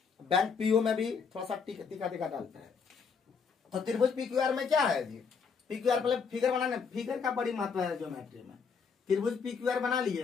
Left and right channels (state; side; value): quieter; right; 5.8 dB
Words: बैंक पीओ में भी थोड़ा सा टिका डालता है। तो त्रिभुज पीक्यूआर में क्या है जी? पीक्यूआर पहले फिगर बनाने, फिगर का बड़ी महत्व है ज्योमेट्री में। त्रिभुज पीक्यूआर बना लिए,